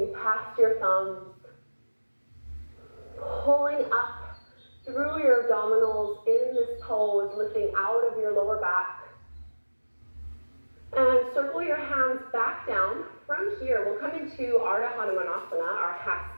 past your thumbs, pulling up through your abdominals in this pose, lifting out of your lower back. And circle your hands back down. From here, we'll come into Hanumanasana, our half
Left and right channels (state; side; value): inverted; both; correlation -1.00